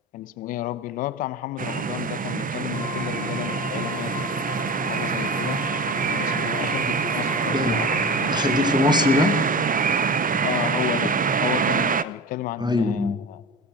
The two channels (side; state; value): both; normal; correlation 0.29